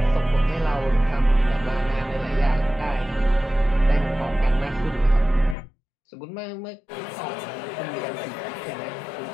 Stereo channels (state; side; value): drops out; right; at 5.6 s